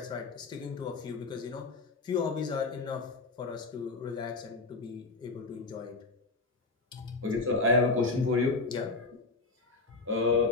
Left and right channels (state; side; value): quieter; right; 3.6 dB